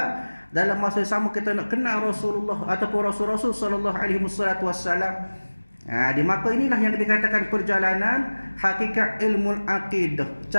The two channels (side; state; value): both; inverted; correlation -1.00